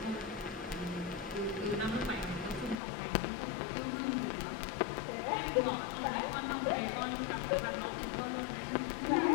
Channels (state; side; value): drops out; right; at 2.8 s